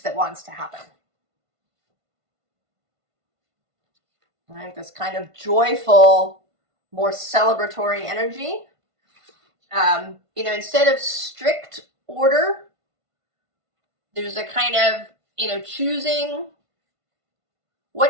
that wants to happen. Right? This kind of joyful, more celebratory energy. Instead of strict order, there's a kind of, choosing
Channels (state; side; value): late; left; 1.5 ms